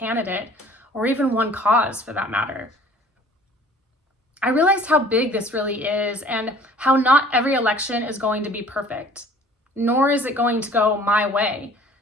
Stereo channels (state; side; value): normal; both; correlation 0.51